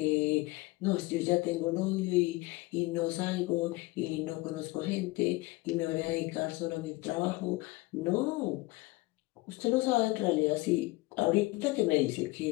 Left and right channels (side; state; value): right; quieter; 21.8 dB